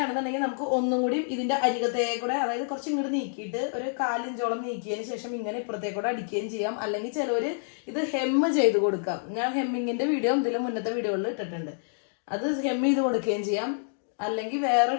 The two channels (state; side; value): silent; right; digital silence